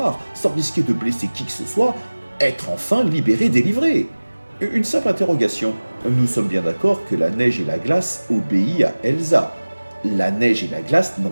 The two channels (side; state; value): both; inverted; correlation -1.00